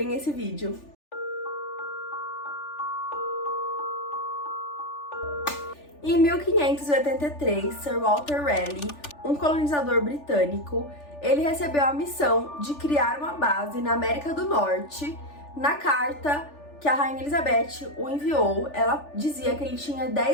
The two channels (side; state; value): right; late; 3.4 ms